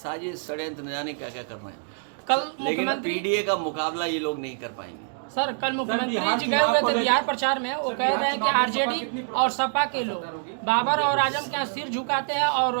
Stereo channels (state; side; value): silent; left; 61 dB below the other